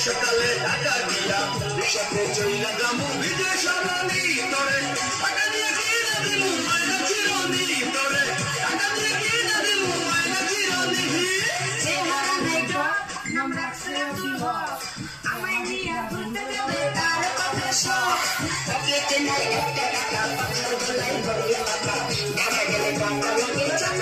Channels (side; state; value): both; identical; correlation 1.00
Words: ঢাকা গিয়া রিসাতে চইলা যামু বিদেশ রানী তোরে টাকা দিয়ে কিনা দিমু মাইনা চিরনি তোরে টাকা দিয়ে কিনা দিমু মাইনা চিরনি চেহারা দেখো আমরা সেও আমায় নিয়ে ঘুরতে যাবে তার কথা সব পকেটে নাই একটা টাকা পাথর গলায় ভরিয়ে টাকা ঢাকা গেলে টাকা লাগে